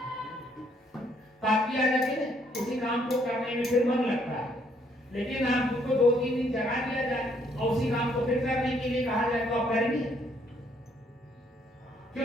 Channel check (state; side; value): normal; both; correlation 0.68